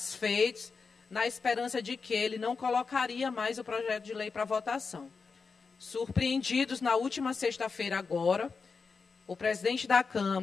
na esperança de que ele não colocaria mais o projeto de lei para votação. Surpreendidos, na última sexta-feira agora, o presidente da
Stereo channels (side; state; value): right; quieter; 4.9 dB